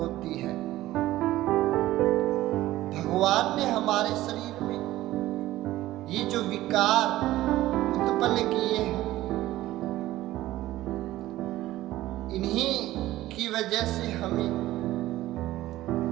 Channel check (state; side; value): quieter; left; 15.8 dB